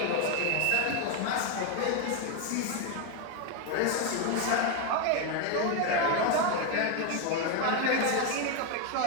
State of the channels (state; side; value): different; both; correlation 0.02